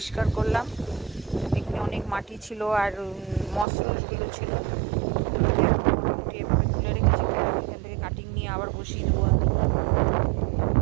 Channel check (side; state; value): left; drops out; at 3.7 s